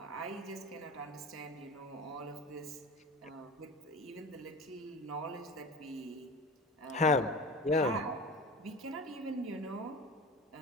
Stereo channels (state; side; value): normal; both; correlation 0.33